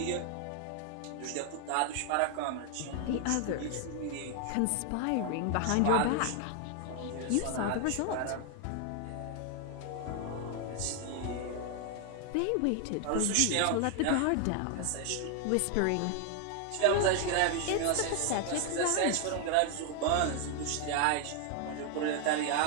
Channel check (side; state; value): both; different; correlation 0.01